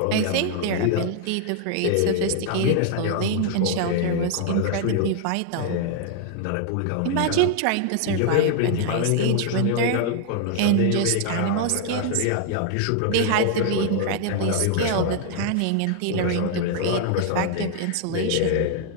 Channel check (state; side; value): different; both; correlation 0.00